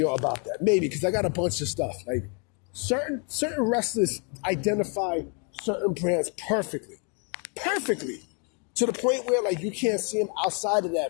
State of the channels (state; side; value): quieter; right; 37.4 dB